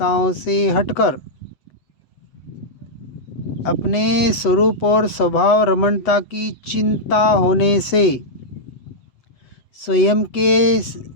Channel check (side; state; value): right; late; 7.8 ms